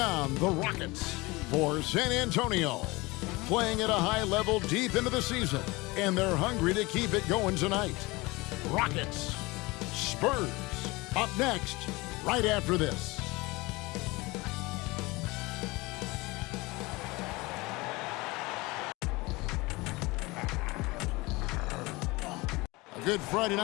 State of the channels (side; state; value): right; quieter; 23.0 dB